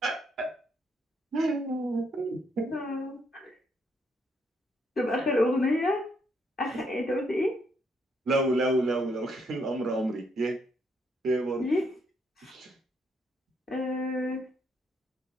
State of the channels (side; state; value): both; normal; correlation 0.74